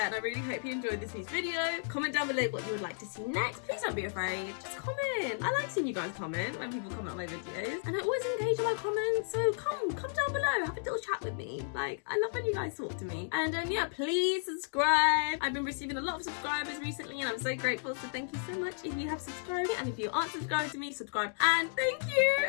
and I really hope you enjoyed this week's video. Comment down below what you would like to see next. Please don't be afraid. Just comment. I like seeing you guys comment when people comment on my videos, and I always engage in my comments, so come down below. Have a little chat with me. Like, I love when you guys talk to me. And yeah, please subscribe. I've been receiving a lot of subscribers recently, and I'm so grateful, so thank you so much if you have subscribed. And if you aren't subscribed to me, subscribe. And thank you.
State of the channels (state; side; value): silent; right; digital silence